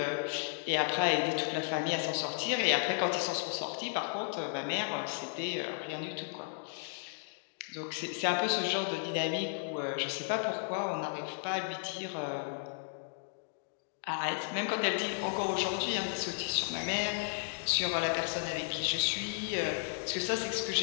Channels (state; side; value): silent; right; digital silence